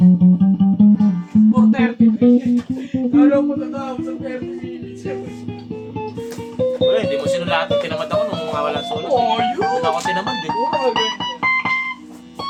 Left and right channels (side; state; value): both; identical; correlation 1.00